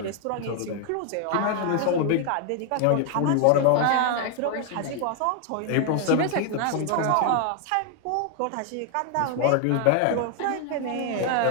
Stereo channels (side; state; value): both; different; correlation 0.00